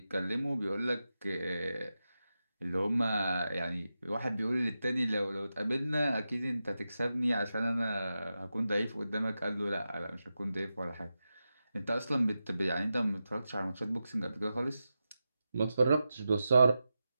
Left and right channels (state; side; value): inverted; both; correlation -0.91